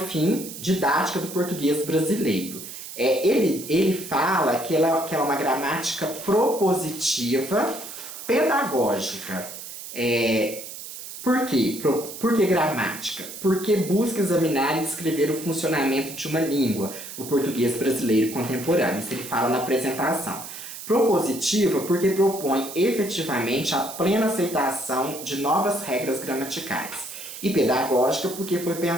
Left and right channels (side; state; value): right; noise; hiss, 11 dB below the sound